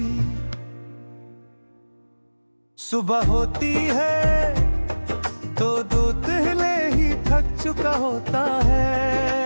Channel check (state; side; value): inverted; both; correlation -1.00